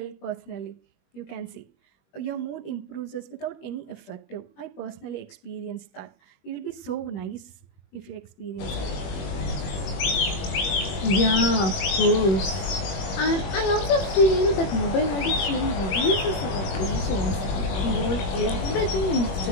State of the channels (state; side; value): late; right; 21 ms